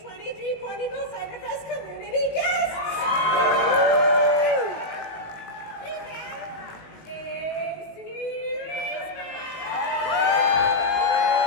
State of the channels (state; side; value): late; right; 19 ms